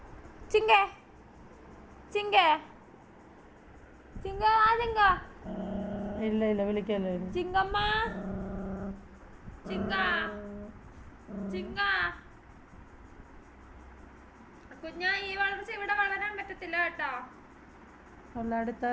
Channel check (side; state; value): both; identical; correlation 1.00